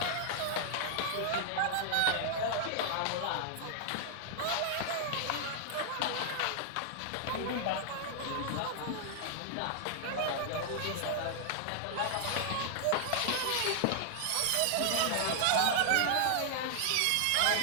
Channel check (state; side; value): different; both; correlation -0.01